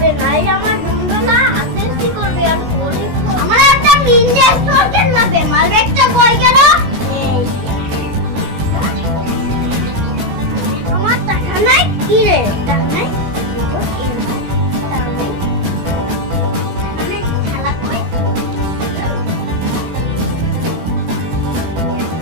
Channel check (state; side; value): late; left; 16 ms